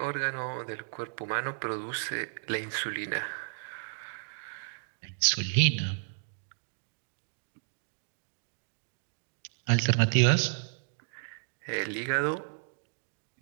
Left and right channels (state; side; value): silent; left; digital silence